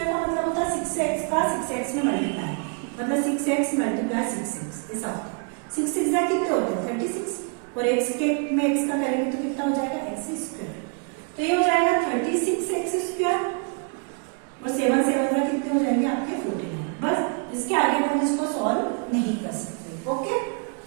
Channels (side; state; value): left; quieter; 38.3 dB